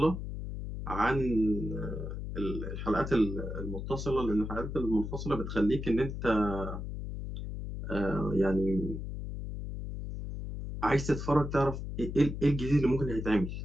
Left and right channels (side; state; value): left; noise; hum, 6 dB below the sound